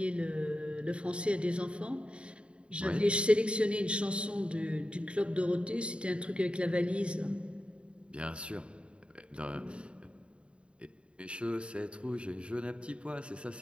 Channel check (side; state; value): left; late; 0.057 ms